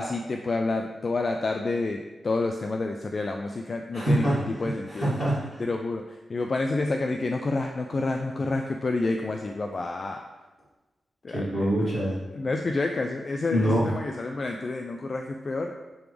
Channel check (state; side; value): normal; both; correlation 0.90